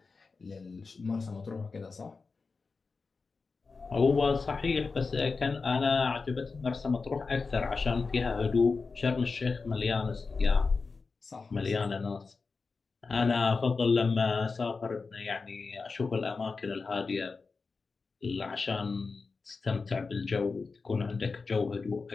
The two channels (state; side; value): quieter; right; 4.4 dB